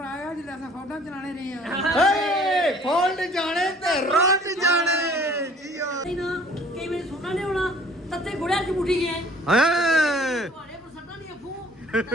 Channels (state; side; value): normal; both; correlation 0.54